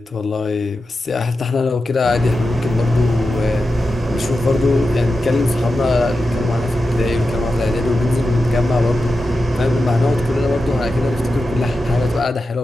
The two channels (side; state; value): both; normal; correlation 0.91